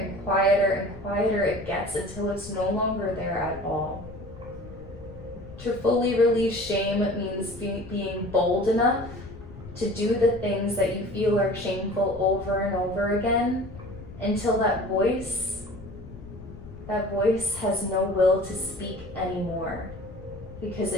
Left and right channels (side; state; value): left; noise; rumble, 15 dB below the sound